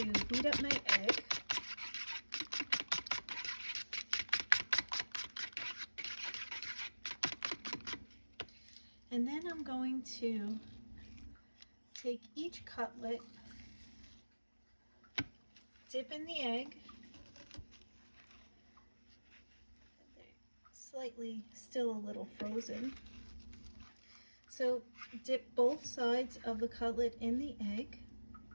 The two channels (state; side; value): inverted; both; correlation -1.00